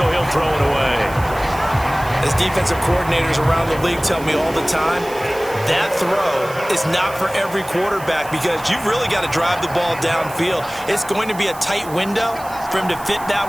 he'll throw it away. As defensive coordinators around the league tell me all the time, that throw is not for every quarterback because you've really got to drive the ball downfield. It's going to be a tight window for him to fit that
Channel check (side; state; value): right; noise; hiss, 18 dB below the sound